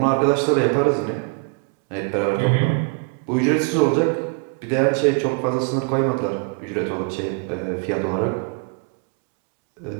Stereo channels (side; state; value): left; quieter; 33.1 dB